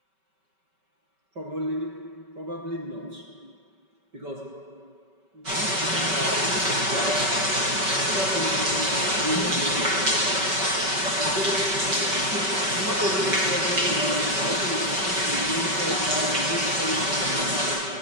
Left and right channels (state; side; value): late; left; 5.2 ms